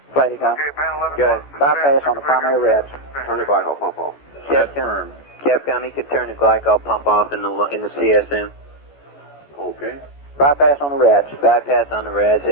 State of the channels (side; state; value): right; late; 14 ms